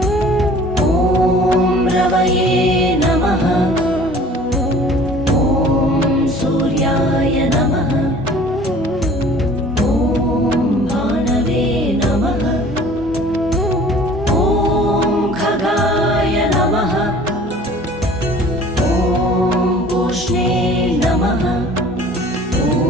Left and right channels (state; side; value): normal; both; correlation 0.48